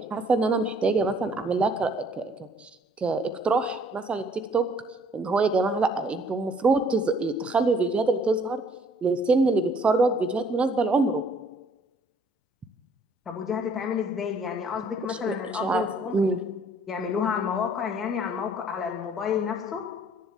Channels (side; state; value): both; normal; correlation 0.60